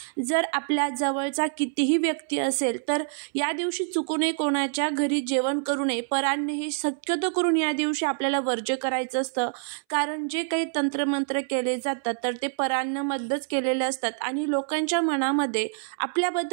जर आपल्या जवळचा कितीही व्यक्ती असेल तर या दिवशी चुकूनही कोणाच्या घरी जेवण करू नये। परान्न हे शक्यतो करून या दिवशी आपल्याला वर्ज्य करायचं असतं, कारण जे काही तंत्रमंत्र केले जातात तर ते परान्नमध्येच केलेले असतात आणि लोकांच्या मनामध्ये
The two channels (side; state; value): left; silent; 61 dB below the other